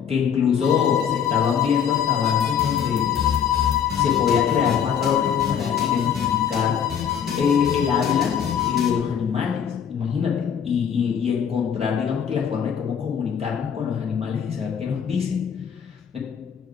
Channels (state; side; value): quieter; right; 8.0 dB